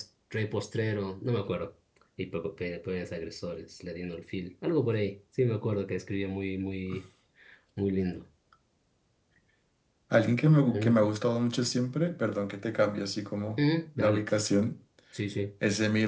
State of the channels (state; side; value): identical; both; correlation 1.00